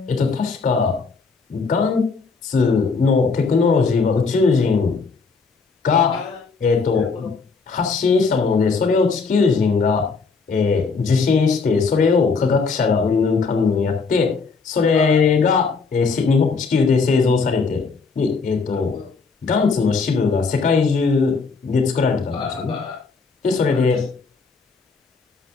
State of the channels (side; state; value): right; quieter; 4.7 dB